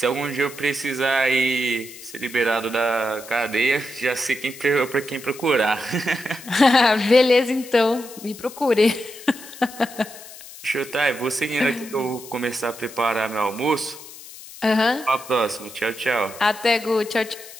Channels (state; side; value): noise; left; hiss, 16 dB below the sound